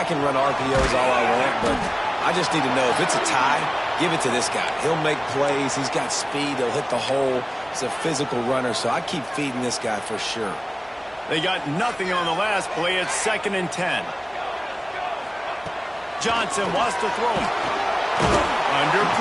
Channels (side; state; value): both; identical; correlation 1.00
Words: can run RPOs all I want, but I just need to know if it's a tie, give it to this guy. He'll make plays. He's got speed. He'll hit the hole. He's a physical runner, so I keep feeding this guy for sure. They got nothing on the last play. It's 2nd and 10. Johnson wants to throw him. Under